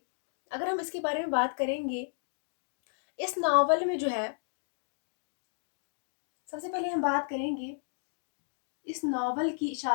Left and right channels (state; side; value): silent; right; digital silence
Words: अगर हम इसके बारे में बात करेंगे, इस नावल में जो है सबसे पहले हम बात करेंगे इस नावल की